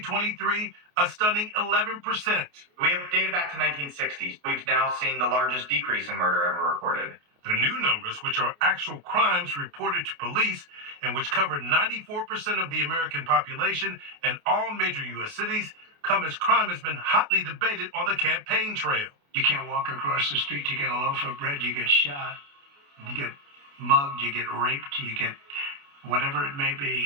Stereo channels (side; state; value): left; late; 28 ms